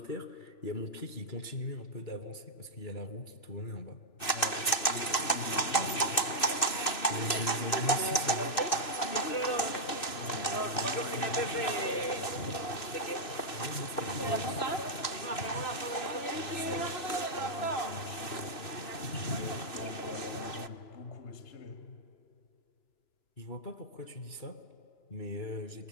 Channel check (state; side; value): late; right; 2.9 ms